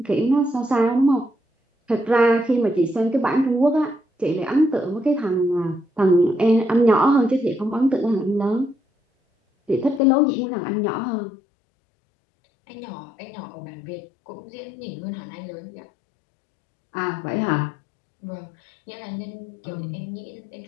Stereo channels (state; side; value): drops out; right; at 10.0 s